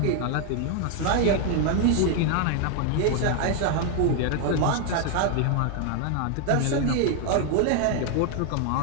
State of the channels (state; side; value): different; both; correlation 0.00